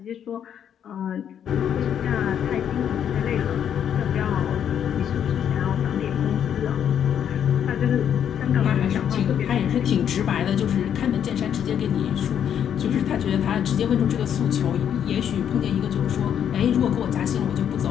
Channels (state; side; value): quieter; right; 9.0 dB